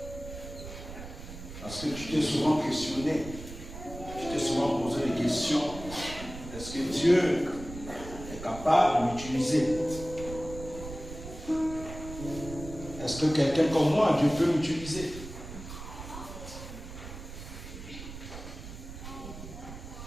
Parce que tu t'es souvent questionné, tu t'es souvent posé des questions. Est-ce que Dieu est capable de m'utiliser? Est-ce que quelqu'un comme moi, Dieu peut m'utiliser?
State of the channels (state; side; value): noise; right; rumble, 12 dB below the sound